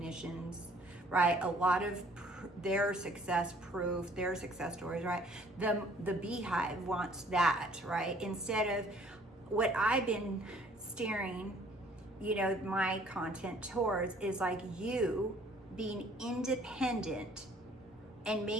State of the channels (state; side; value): normal; both; correlation 0.57